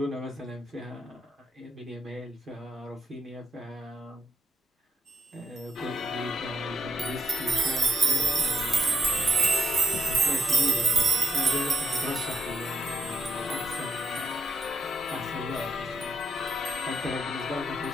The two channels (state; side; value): normal; both; correlation 0.76